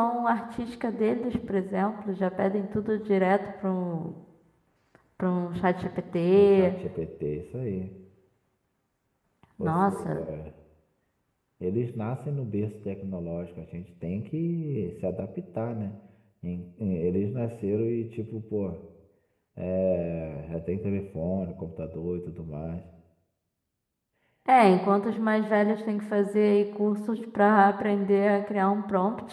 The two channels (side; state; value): both; identical; correlation 1.00